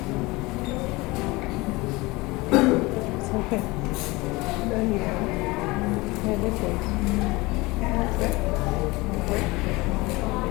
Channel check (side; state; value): right; quieter; 22.7 dB